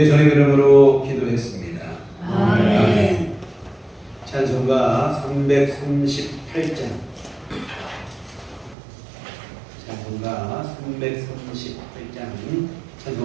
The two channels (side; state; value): left; drops out; at 8.8 s